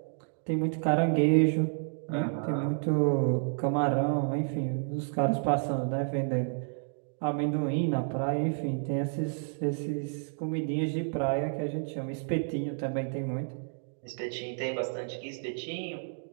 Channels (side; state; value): left; silent; digital silence